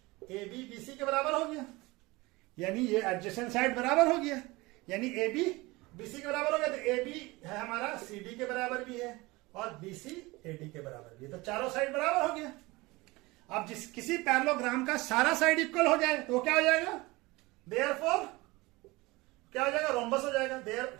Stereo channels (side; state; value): left; quieter; 22.2 dB